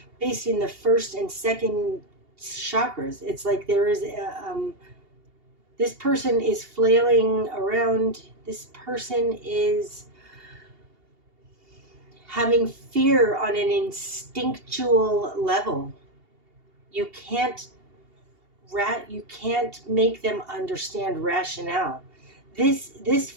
based in the first and second chakras. It's like there is this person is flailing around. This person is having fear on an instinctual level. You can't make them understand rationale. This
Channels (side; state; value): left; late; 2.8 ms